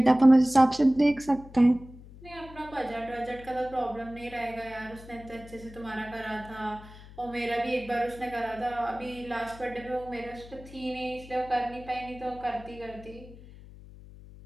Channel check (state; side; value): noise; left; hum, 18 dB below the sound